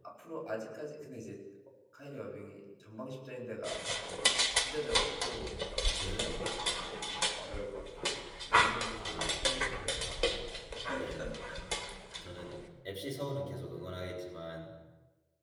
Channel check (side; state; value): both; identical; correlation 1.00